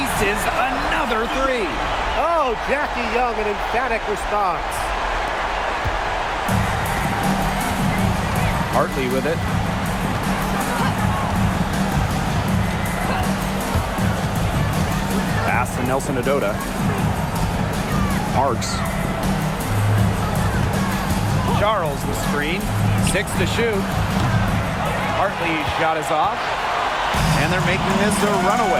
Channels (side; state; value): both; identical; correlation 1.00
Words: another 3. Oh, Jackie Young, an emphatic response. Hartley with it. to Nelson Adota. Parks. Charles the screen. 6 to shoot. Hartley's shot is off. And they're making this a